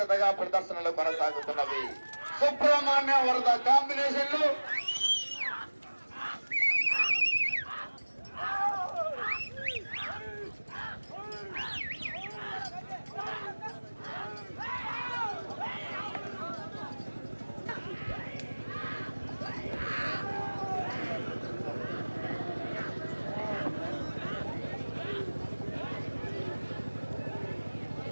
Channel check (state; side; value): inverted; both; correlation -1.00